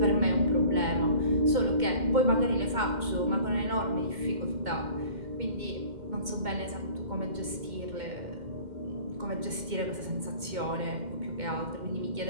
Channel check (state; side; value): late; left; 2.1 ms